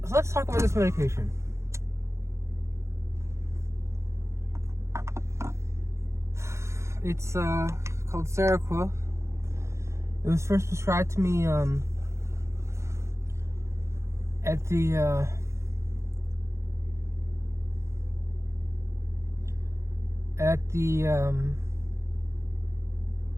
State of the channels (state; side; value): late; left; 0.14 ms